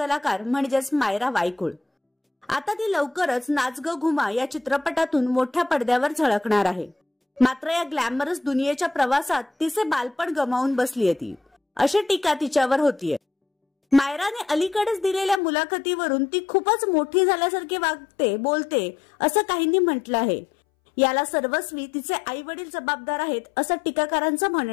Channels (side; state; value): right; drops out; at 15.4 s